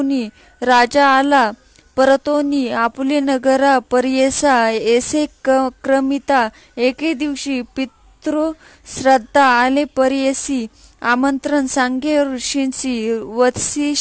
राजा आला परतोनी आपुले नगरा पर्येसा. ऐसे क्रमिता एके दिवशी पितृ श्राद्धा आले पर्येसी आमंत्रण सांगे ऋषींसी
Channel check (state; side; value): identical; both; correlation 1.00